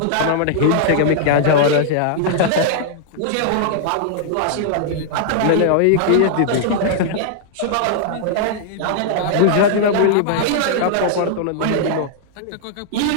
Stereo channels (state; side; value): different; both; correlation -0.01